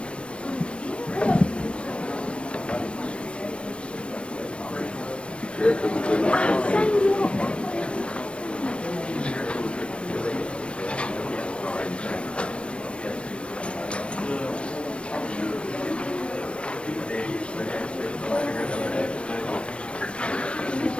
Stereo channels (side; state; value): right; late; 0.059 ms